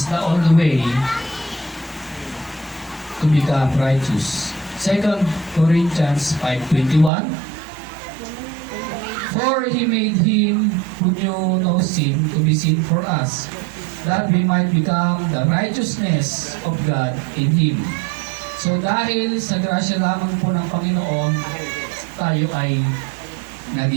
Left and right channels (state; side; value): drops out; left; at 7.1 s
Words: the only way to become righteous. 2 Corinthians 5:21. For He made Him who knew no sin to be sin for us, that we might become the righteousness of God in Him. So dahil sa grasya lamang po ng Panginoon, tayo ay